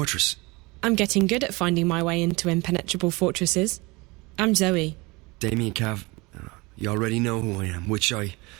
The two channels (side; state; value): left; quieter; 24.8 dB